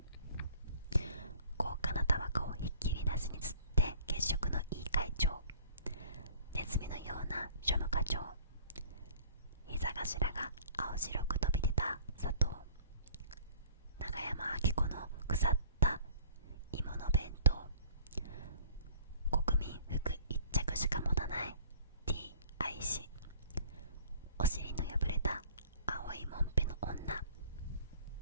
高価なタバコをひっきりなしに吸って血色のいい会長、ネズミのような庶務課長、膝頭が青白く飛び出た佐藤、長山明子の腐った芋の弁当、国民服一着しか持たない T 愛し、お尻の破れた青いもんぺの女、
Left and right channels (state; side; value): inverted; both; correlation -0.49